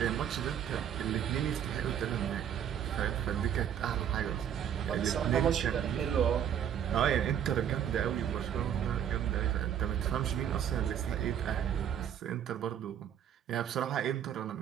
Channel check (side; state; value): left; quieter; 9.3 dB